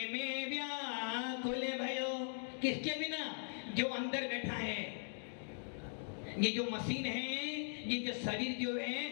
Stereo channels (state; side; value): silent; right; digital silence